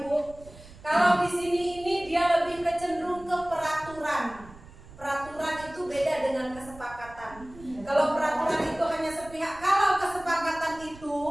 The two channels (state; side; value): noise; right; rumble, 19 dB below the sound